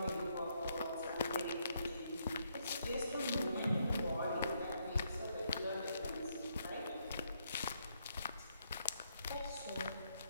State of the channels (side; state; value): both; inverted; correlation -0.75